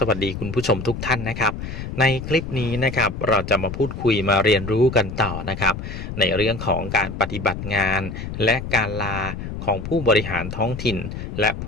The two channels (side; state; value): left; noise; rumble, 7 dB below the sound